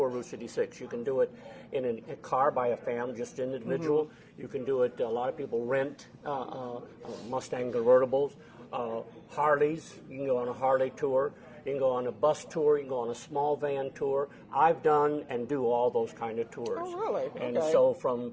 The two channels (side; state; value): both; identical; correlation 1.00